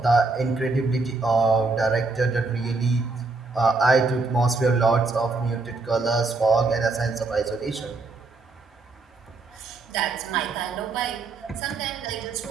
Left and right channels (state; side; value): quieter; left; 3.7 dB